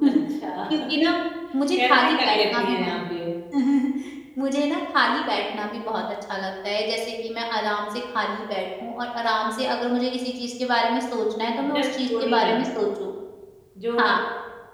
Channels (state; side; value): identical; both; correlation 1.00